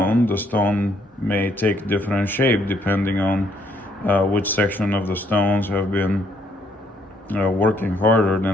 may take different shape depending on which section of the stones have been working harder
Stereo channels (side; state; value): both; normal; correlation 0.70